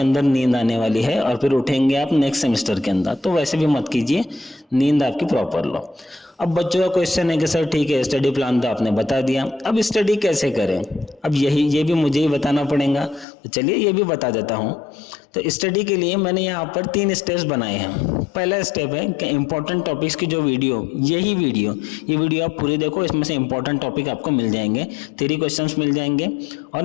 अंदर नींद आने वाली है और फिर उठेंगे आप नेक्स्ट सेमेस्टर के अंदर, तो वैसे भी मत कीजिए, नींद आपकी प्रॉपर लो। अब बच्चों का क्वेश्चन है कि सर ठीक है स्टडी प्लान तो आपने बता दिया, अब स्टडी कैसे करें, अब ये भी मुझे ही बताना पड़ेगा, तो चलिए ये भी बता देता हूँ। तो स्टडी के लिए मैंने यहाँ पर 3 स्टेप्स बनाए हैं। पहला स्टेप है कि इंपॉर्टेंट टॉपिक्स की जो वीडियो, ये वीडियो आप पूरी देखो, इसमें से इंपॉर्टेंट टॉपिक आपको मिल जाएंगे, थ्योरी क्वेश्चंस मिल जाएंगे और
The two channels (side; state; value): right; drops out; at 13.2 s